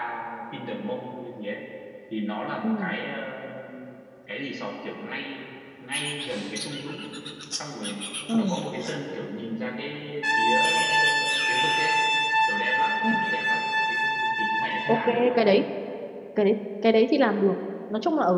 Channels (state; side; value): identical; both; correlation 1.00